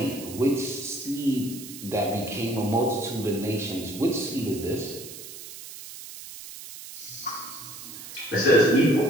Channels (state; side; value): noise; right; hiss, 13 dB below the sound